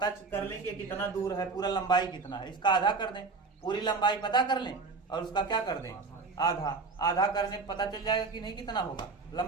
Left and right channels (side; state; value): left; quieter; 4.2 dB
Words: कर लें कि कितना दूर है, पूरा लंबाई कितना है, इसका आधा कर दें, पूरी लंबाई पता कर लें और उसका क्या कर दें, आधा। आधा करने पता चल जाएगा कि नहीं कितना होगा